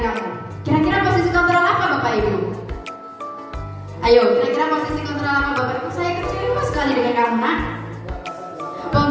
kamu. Kira-kira posisi kontrol apa Bapak Ibu? Ayo, kira-kira posisi kontrol apa Bapak Ibu? Saya kecewa sekali dengan kamu, nak.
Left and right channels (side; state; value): both; identical; correlation 1.00